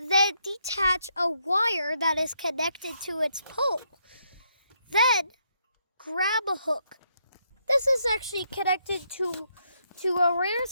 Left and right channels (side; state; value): both; inverted; correlation -0.76